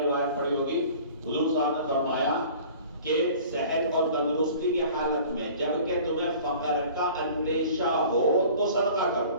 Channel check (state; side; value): inverted; both; correlation -0.46